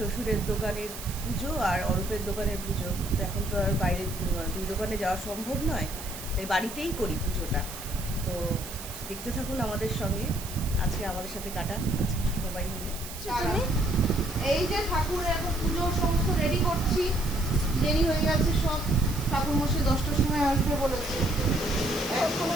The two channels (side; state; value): right; noise; hiss, 11 dB below the sound